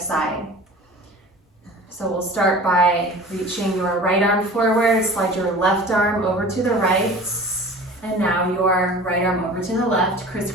So we'll start by reaching your right arm forward, slide your left arm over to the right, and now your right arm over to the left,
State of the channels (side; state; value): both; normal; correlation 0.41